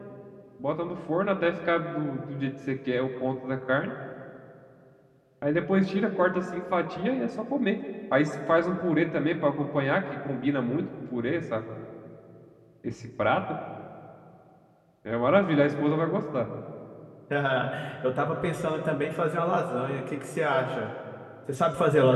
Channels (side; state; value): both; identical; correlation 1.00